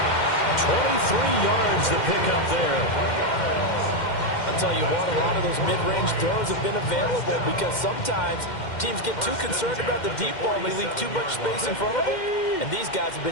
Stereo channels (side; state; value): right; late; 2.1 ms